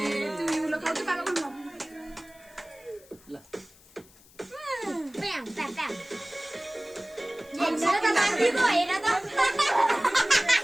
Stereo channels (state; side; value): noise; left; hiss, 26 dB below the sound